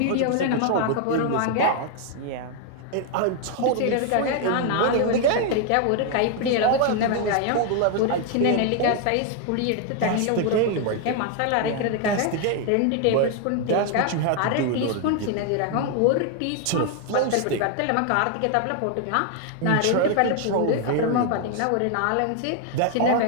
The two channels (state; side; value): different; both; correlation 0.00